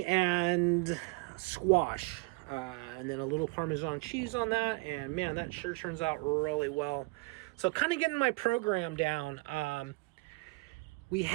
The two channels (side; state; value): left; quieter; 27.3 dB